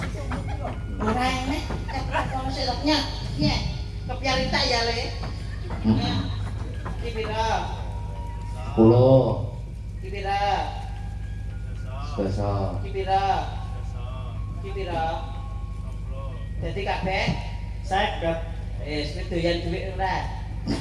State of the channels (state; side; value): identical; both; correlation 1.00